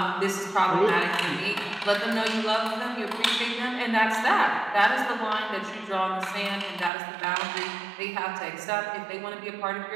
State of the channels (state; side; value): drops out; left; at 6.9 s